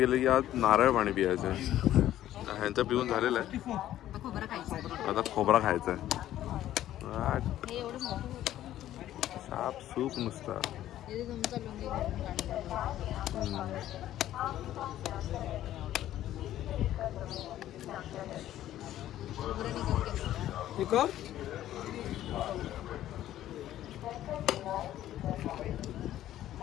की आज नारळ पाणी पियायचं. ह्यांचं पिऊन झालेलं आहे, आता खोबरा खायचा आहे. साप सूप नुसता.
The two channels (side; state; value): right; quieter; 12.9 dB